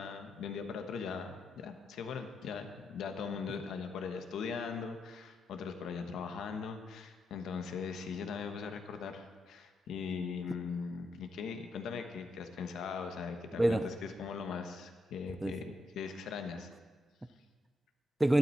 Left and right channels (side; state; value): both; normal; correlation 0.82